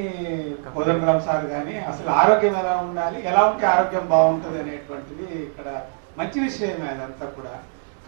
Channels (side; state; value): left; silent; 64 dB below the other